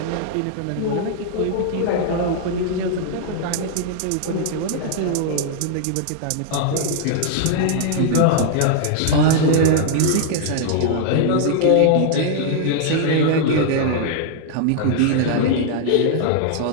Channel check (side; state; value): both; different; correlation -0.01